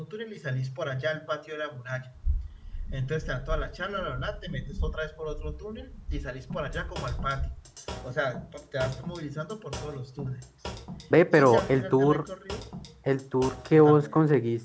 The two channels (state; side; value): identical; both; correlation 1.00